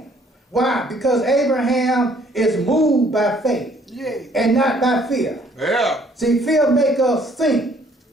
Why? Because Abraham is moved by faith Yeah. and not by fear. Yeah. See, fear make us think,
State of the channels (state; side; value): normal; both; correlation 0.61